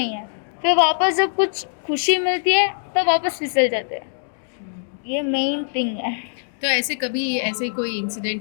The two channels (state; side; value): silent; right; digital silence